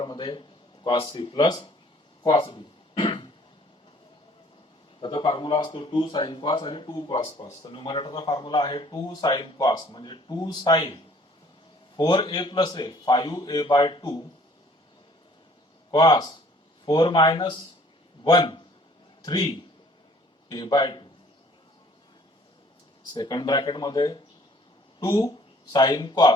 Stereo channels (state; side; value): normal; both; correlation 0.57